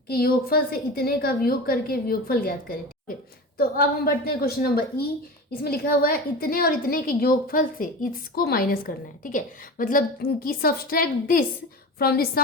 के योगफल से इतने का वियोग करके वियोगफल ज्ञात करें, ठीक है। तो अब हम बढ़ते हैं क्वेश्चन नंबर ई। इसमें लिखा हुआ है इतने और इतने के योगफल से इसको माइनस करना है, ठीक है। मतलब कि subtract this from the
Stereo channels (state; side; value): normal; both; correlation 0.30